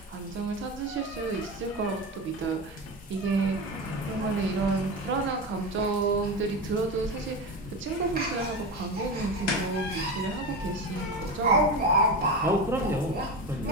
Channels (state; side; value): normal; both; correlation 0.22